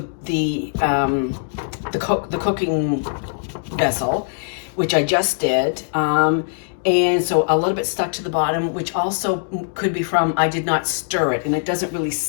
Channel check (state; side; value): silent; right; digital silence